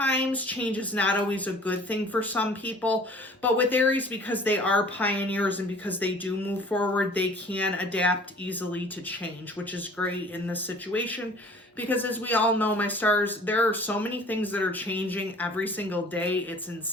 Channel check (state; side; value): normal; both; correlation 0.49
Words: change is not always a good thing for some people, but with Aries, because they are pioneers and because they do move forward, they can adapt easily to change, which is great in this situation. Because as we all know, my stars, there are so many things that are changing every single day. It's